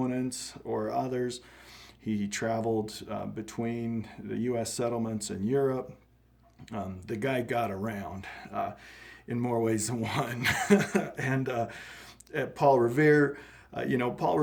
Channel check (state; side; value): identical; both; correlation 1.00